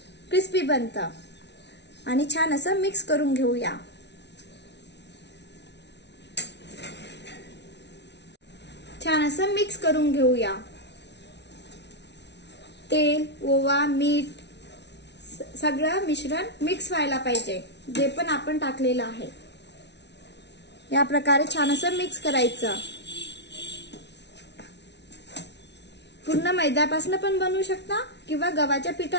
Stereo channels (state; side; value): late; right; 0.50 ms